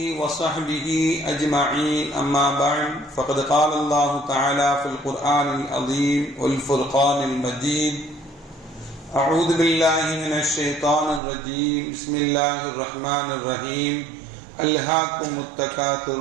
وصحبه أجمعين. أما بعد، فقد قال الله تعالى في القرآن العظيم والفرقان المجيد: أعوذ بالله من الشيطان الرجيم. بسم الله الرحمن الرحيم. ألهاكم التكاثر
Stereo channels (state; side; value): drops out; left; at 11.2 s